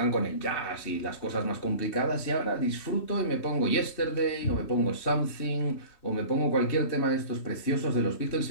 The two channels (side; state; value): right; late; 3.2 ms